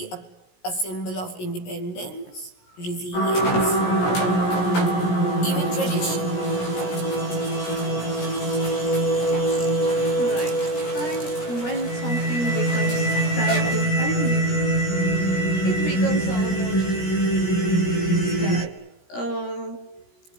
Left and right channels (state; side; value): late; right; 17 ms